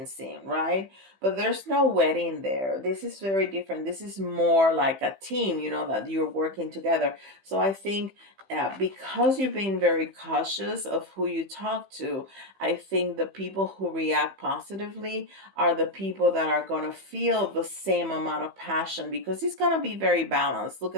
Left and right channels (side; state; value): left; late; 15 ms